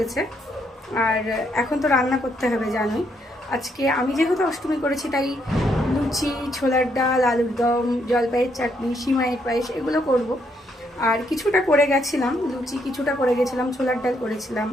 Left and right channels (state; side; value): normal; both; correlation 0.74